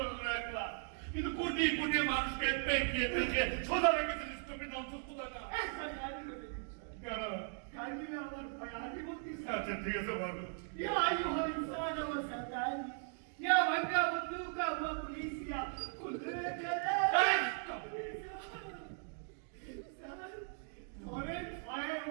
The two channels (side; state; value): left; silent; 52 dB below the other